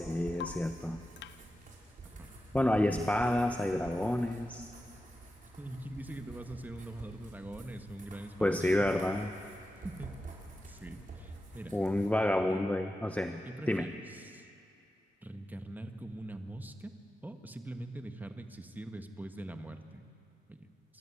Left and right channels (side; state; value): both; normal; correlation 0.91